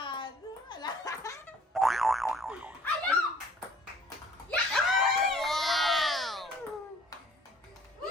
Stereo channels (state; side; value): normal; both; correlation 0.55